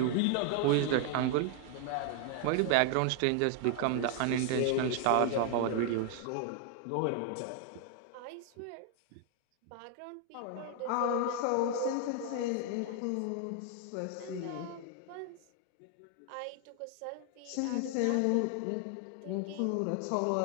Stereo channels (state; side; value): different; both; correlation 0.00